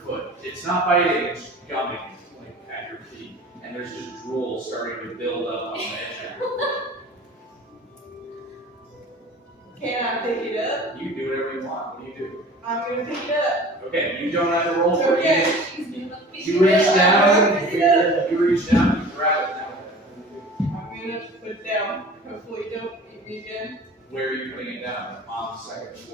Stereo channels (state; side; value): normal; both; correlation 0.42